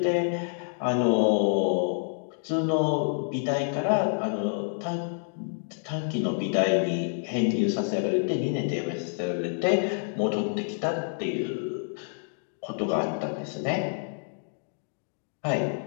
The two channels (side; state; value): right; silent; digital silence